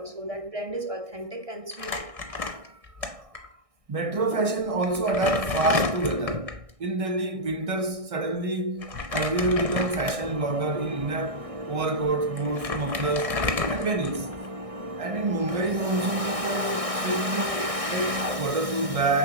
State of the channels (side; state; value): left; late; 1.6 ms